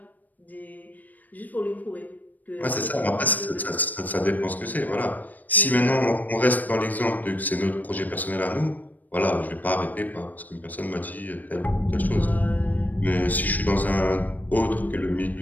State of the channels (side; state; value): right; late; 0.083 ms